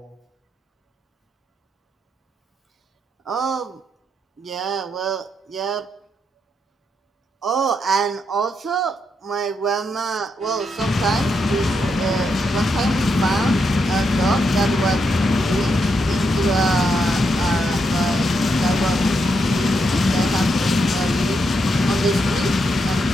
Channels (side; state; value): both; normal; correlation 0.81